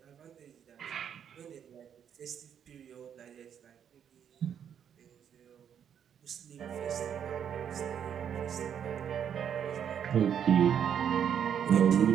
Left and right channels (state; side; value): quieter; left; 8.6 dB